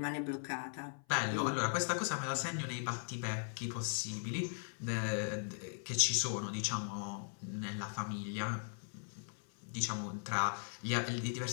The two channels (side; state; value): right; silent; 52 dB below the other